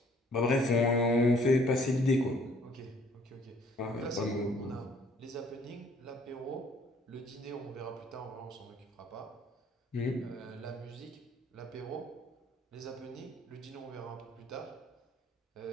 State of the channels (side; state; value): both; normal; correlation 0.60